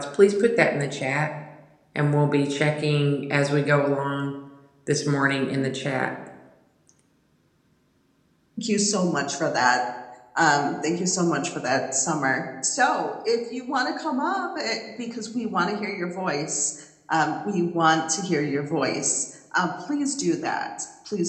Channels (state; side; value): identical; both; correlation 1.00